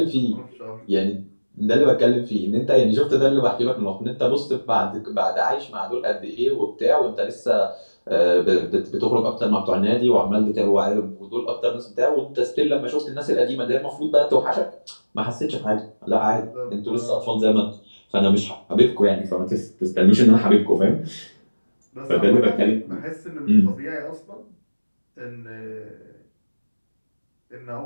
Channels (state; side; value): inverted; both; correlation -1.00